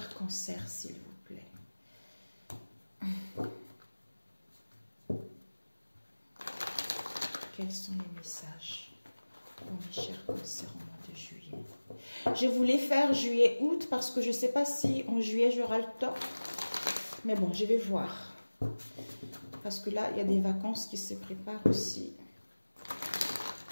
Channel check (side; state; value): both; inverted; correlation -1.00